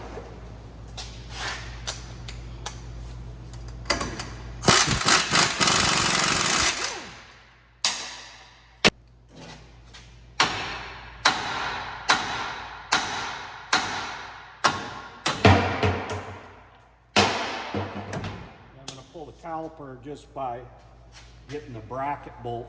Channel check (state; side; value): identical; both; correlation 1.00